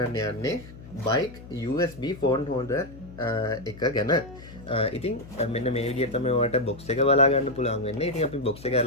යන්නේ bike USB phone holder එක ගැන. ඉතින් මෙන්න මේ විදිහට තමයි ඔයාලට box එක බලා ගන්න පුළුවන් වෙන්නේ. ඉතින් අපි box එක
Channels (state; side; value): noise; left; hum, 17 dB below the sound